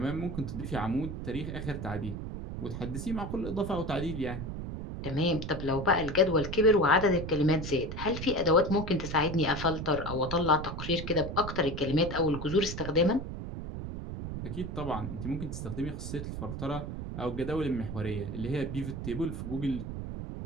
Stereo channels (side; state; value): right; noise; rumble, 6 dB below the sound